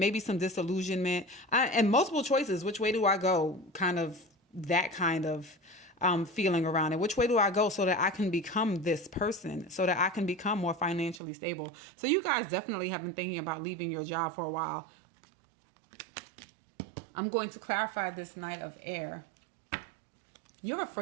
some disillusionment, and multiple choices. Which way do I go? Kind of that kind of feeling around it. Which way do I go so that I can become this person, so that I can become more financially stable? So you guys definitely have been thinking about leaving your job for a while. I'm going to clarify this Knight of Air. You're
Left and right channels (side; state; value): left; drops out; at 11.2 s